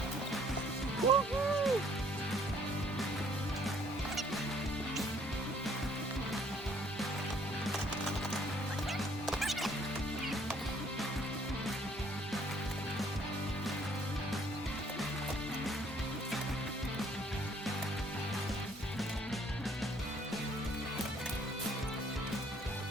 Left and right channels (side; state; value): both; normal; correlation 0.62